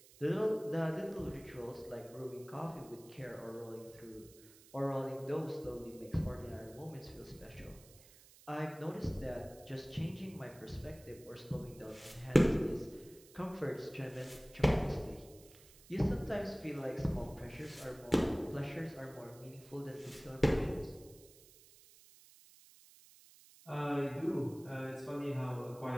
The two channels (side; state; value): right; noise; hiss, 22 dB below the sound